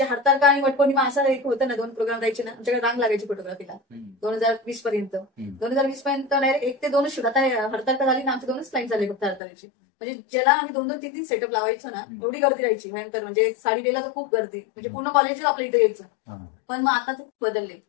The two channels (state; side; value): drops out; right; at 9.4 s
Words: हरतालिका आणि वटपौर्णिमा असं एक होतं ना, 2 प्रोग्राम राहायचे ना, आमच्याकडे रांग लागायची फोटोग्राफीला 2020 पर्यंत. 2020 पर्यंत डायरेक्ट 1 ते 2च शूट. आता हरतालिका झाली ना, आमचे 2च क्लाइंट झाले फक्त हरतालिकेचे. म्हणजे ज्याला आम्ही 2-2, 3-3 सेटअप लावायचो ना, एवढी गर्दी राहायची भयंकर. म्हणजे साडी द्यायला तर खूप गर्दी, म्हणजे पूर्ण कॉलेजच आपल्या इथे यायचं. पण मग आता ते बदलले,